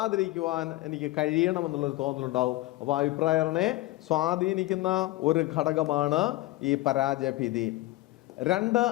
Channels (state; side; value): quieter; right; 18.4 dB